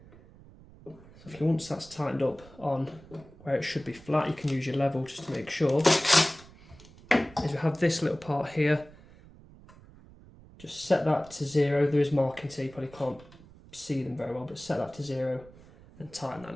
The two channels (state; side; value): noise; right; rumble, 22 dB below the sound